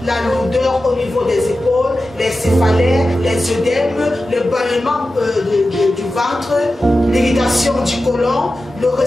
La lourdeur au niveau des épaules, les céphalées, les œdèmes, le ballonnement du ventre, l'irritation du côlon, le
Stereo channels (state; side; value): normal; both; correlation 0.93